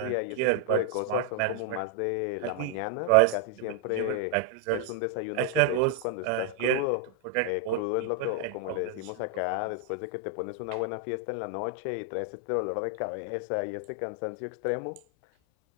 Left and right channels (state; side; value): different; both; correlation 0.00